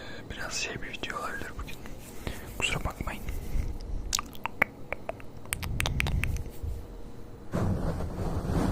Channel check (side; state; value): both; identical; correlation 1.00